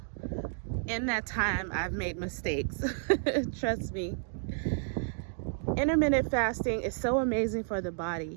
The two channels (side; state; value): left; silent; 57 dB below the other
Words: in that time I've made mistakes. Trust me. Intermittent fasting is so amazing for the